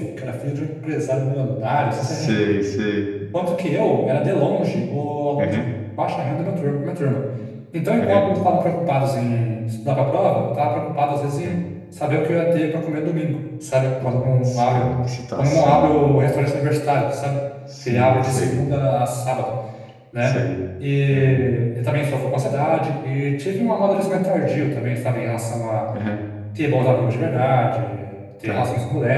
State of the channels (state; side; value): identical; both; correlation 1.00